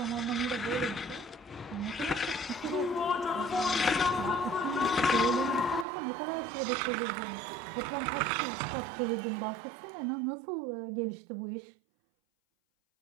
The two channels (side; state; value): left; drops out; at 5.9 s